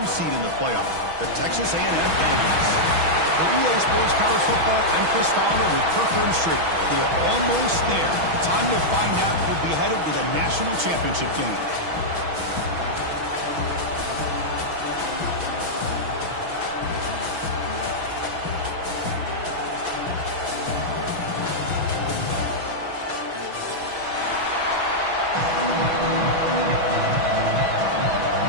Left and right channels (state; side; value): late; left; 6.2 ms